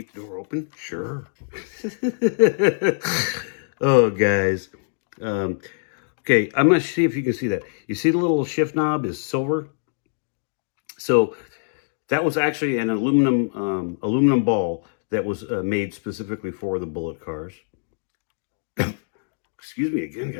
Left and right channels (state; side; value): silent; right; digital silence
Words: the door open? Sure. Oh, guys. Okay, I'm going to see if you can see that. You see the little shift knob is silver? So that was actually an aluminum ball that was made specifically for the Bullitt cars. Excuse me again,